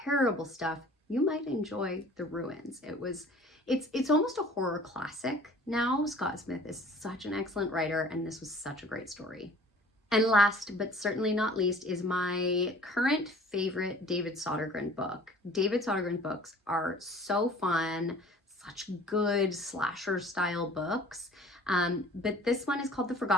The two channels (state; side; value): normal; both; correlation 0.49